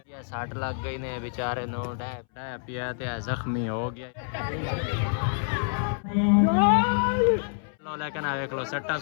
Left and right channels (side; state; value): right; silent; 60 dB below the other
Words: साठ लग गई ने बेचारे नो पिया जख्मी हो गया। लेकिन देख लो सट्टा